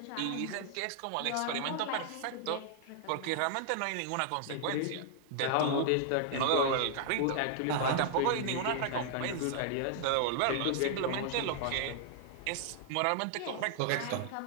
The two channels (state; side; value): different; both; correlation -0.01